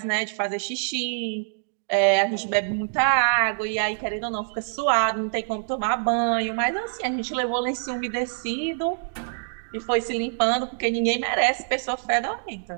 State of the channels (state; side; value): silent; left; digital silence